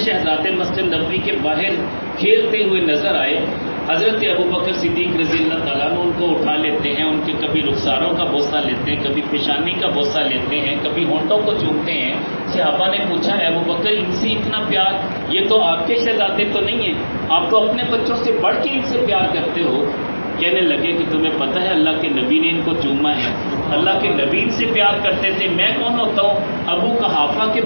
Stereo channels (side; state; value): both; inverted; correlation -1.00